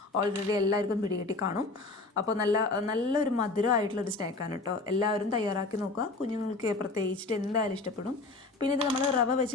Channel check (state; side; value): quieter; right; 3.4 dB